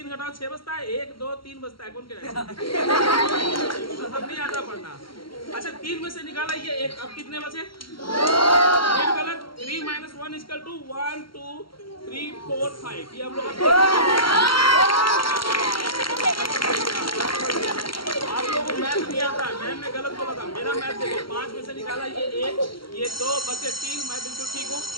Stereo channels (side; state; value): right; late; 0.73 ms